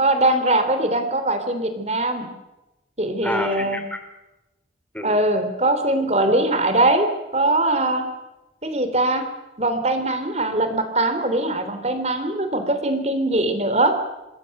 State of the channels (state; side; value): normal; both; correlation -0.06